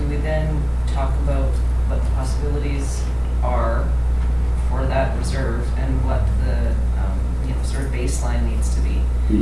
we then talk about what the possibilities are for that reserve and what the, sort of baseline needs to be?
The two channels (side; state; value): both; identical; correlation 1.00